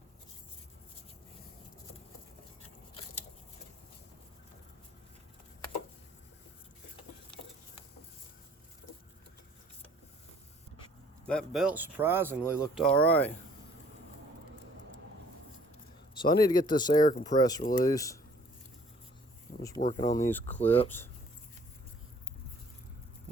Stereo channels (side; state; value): both; normal; correlation 0.56